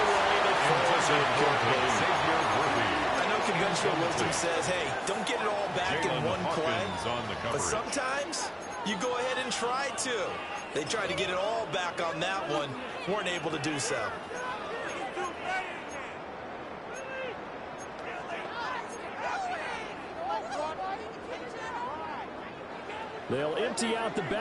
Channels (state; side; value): identical; both; correlation 1.00